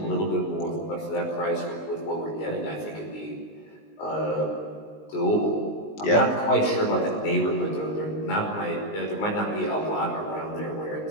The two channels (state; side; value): late; right; 19 ms